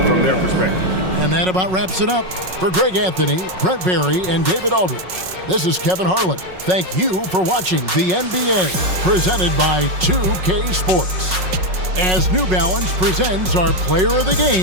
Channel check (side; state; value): left; late; 5.4 ms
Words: from their perspective. And that about wraps it up. For Greg Anthony, Brent Barry, and David Aldridge, this is Kevin Harlan. Thank you for watching the NBA, presented by 2K Sports. As New Balance presents our player of the